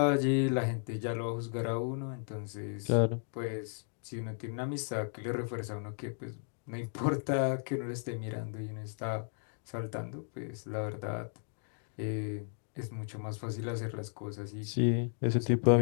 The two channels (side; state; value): right; silent; 55 dB below the other